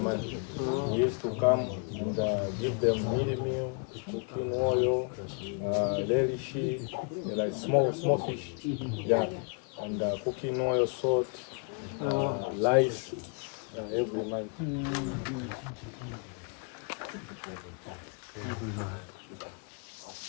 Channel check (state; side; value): quieter; right; 38.8 dB